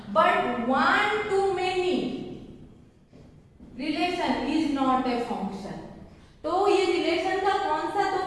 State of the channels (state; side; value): identical; both; correlation 1.00